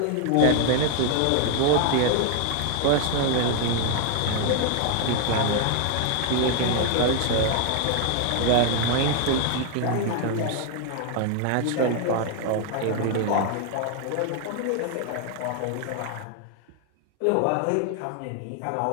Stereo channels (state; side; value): different; both; correlation 0.00